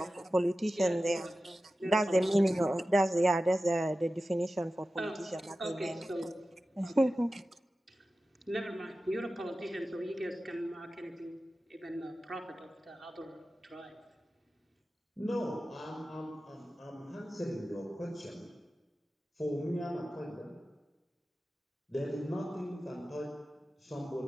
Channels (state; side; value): normal; both; correlation 0.94